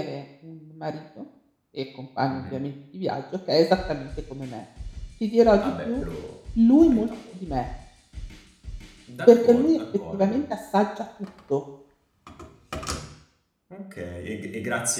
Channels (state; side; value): identical; both; correlation 1.00